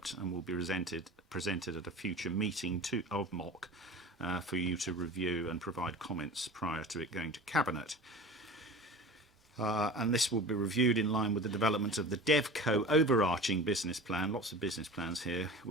and will be presented at a future meeting of MOC for you to review and provide comments prior to it going to Cabinet. And this will be reviewed in line with the development of the DevCo overarching business plan, lots of business plans here,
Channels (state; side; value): normal; both; correlation 0.36